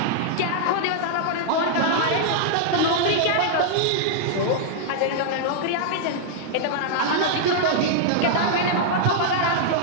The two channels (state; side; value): different; both; correlation -0.01